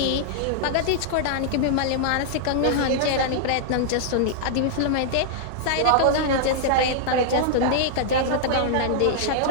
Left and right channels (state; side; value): different; both; correlation -0.01